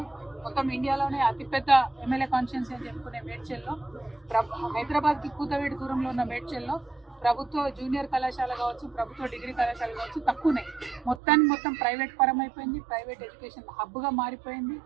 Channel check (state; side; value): drops out; left; at 11.2 s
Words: మొత్తం ఇండియాలోనే అతిపెద్ద ఎమ్మెల్యే కాన్స్టిట్యున్సీ అని చెప్పుకునే మేడ్చల్లో, హైదరాబాద్కి కూతవేడి దూరంలో ఉన్న మేడ్చల్లో ప్రభుత్వ జూనియర్ కళాశాల కావచ్చు, ప్రభుత్వ డిగ్రీ కళాశాల కావచ్చు తక్కువనే. మొత్తం ప్రైవేట్ పరం అయిపోయింది, ప్రైవేట్ ఎడ్యుకేషన్ హబ్గా మారిపోయింది,